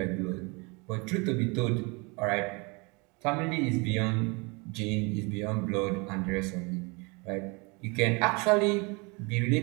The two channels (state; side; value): quieter; left; 29.4 dB